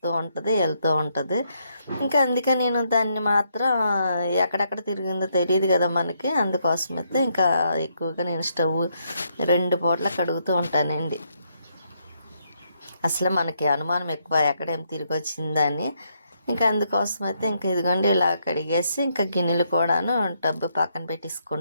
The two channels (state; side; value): inverted; both; correlation -0.75